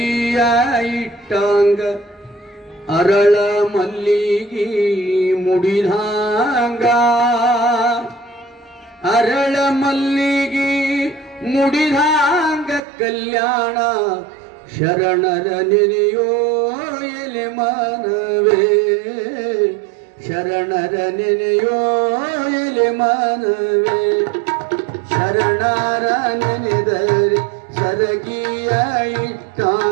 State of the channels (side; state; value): left; drops out; at 12.8 s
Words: ಇಟ್ಟಾಂಗ ಅರಳ ಮಲ್ಲಿಗಿ ಮುಡಿದಾಂಗ ಅರಳ ಮಲ್ಲಿಗಿ ಮುಡಿದಾಂಗ ಕಲ್ಯಾಣ ಶರಣರ ನೆನೆಯೋ ಎಲೆ ಮನವೇ ಶರಣರ ನೆನೆಯೋ ಎಲೆ ಮನವೇ ಶರಣರ ನೆನೆದರೆ ಸರಗಿಯ